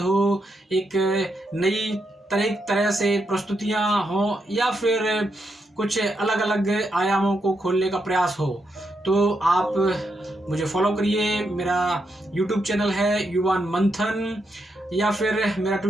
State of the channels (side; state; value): both; normal; correlation 0.82